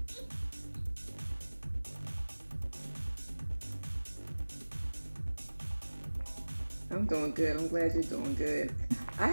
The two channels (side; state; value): both; inverted; correlation -1.00